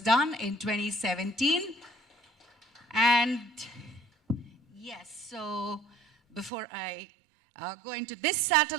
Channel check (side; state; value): left; drops out; at 6.5 s